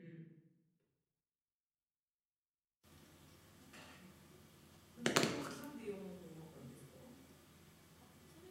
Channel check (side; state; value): both; identical; correlation 1.00